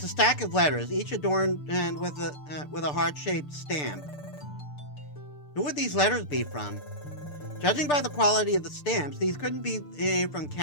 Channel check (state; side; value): late; right; 6.8 ms